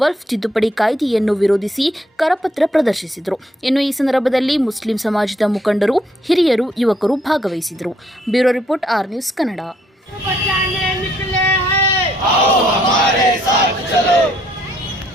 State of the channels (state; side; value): normal; both; correlation 0.69